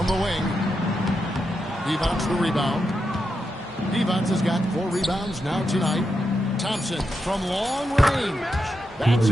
the wing. Divac the rebound. Divac has got 4 rebounds now tonight. Thompson from long range. That's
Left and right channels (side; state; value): both; normal; correlation 0.86